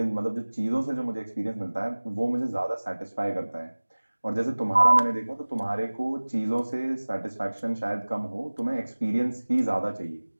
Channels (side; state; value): both; inverted; correlation -1.00